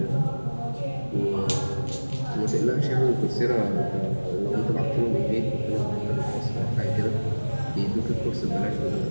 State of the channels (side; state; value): both; inverted; correlation -1.00